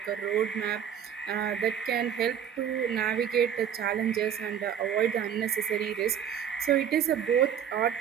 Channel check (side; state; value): left; quieter; 8.8 dB